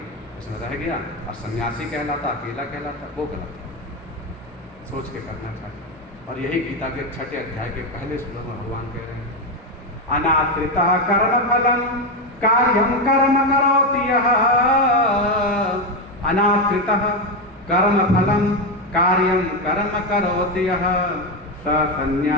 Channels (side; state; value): both; normal; correlation 0.10